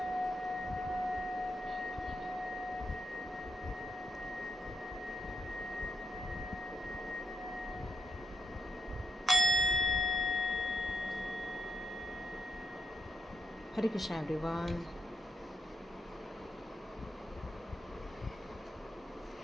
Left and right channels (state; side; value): normal; both; correlation 0.81